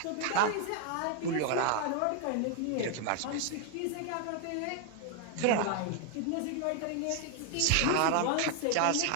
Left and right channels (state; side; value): different; both; correlation 0.00